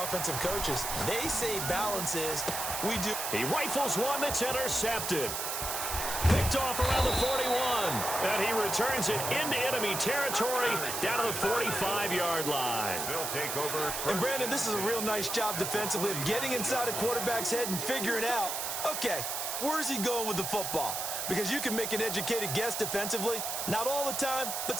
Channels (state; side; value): noise; right; hiss, 3 dB below the sound